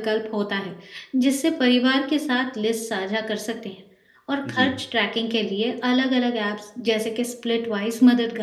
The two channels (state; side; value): identical; both; correlation 1.00